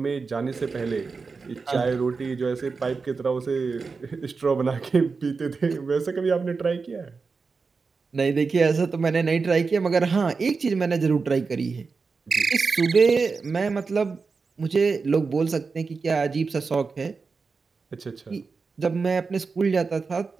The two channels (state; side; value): quieter; left; 4.6 dB